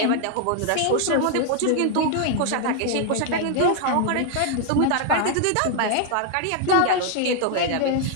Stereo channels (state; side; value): different; both; correlation 0.00